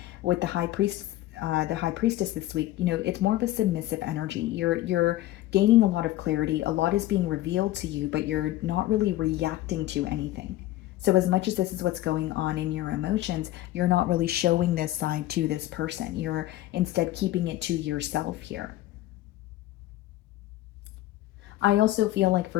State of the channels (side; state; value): right; quieter; 15.3 dB